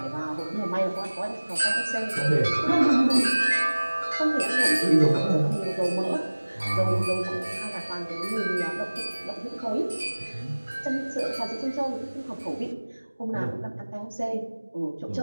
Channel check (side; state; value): both; inverted; correlation -1.00